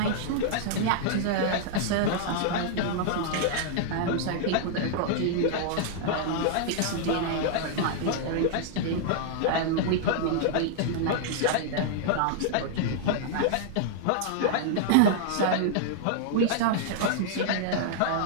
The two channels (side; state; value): both; different; correlation -0.01